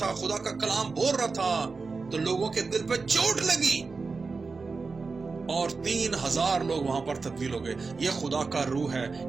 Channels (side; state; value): left; quieter; 4.3 dB